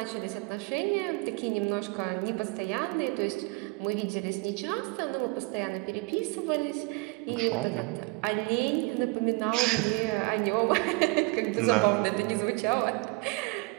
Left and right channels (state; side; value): quieter; left; 26.5 dB